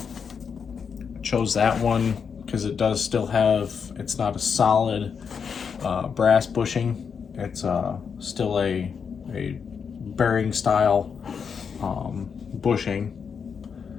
Chose that one because it does still have, it's not a solid brass bushing. It's still a bearing style bushing.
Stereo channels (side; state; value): right; quieter; 6.4 dB